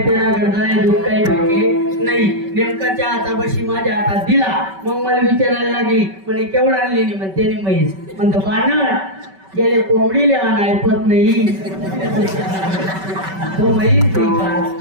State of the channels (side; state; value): left; late; 5.2 ms